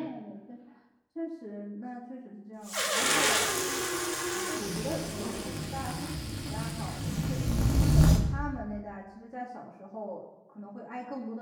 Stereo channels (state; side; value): identical; both; correlation 1.00